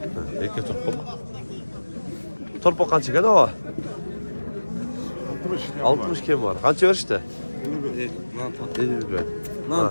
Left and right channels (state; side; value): inverted; both; correlation -1.00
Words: Erkek torpak. Torpak kaç gene o? 60 kim var? Kaç ver işte? 50 ver.